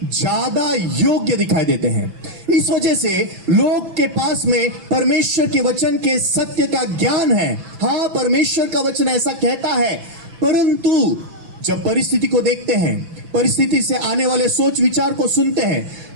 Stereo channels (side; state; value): left; late; 6.0 ms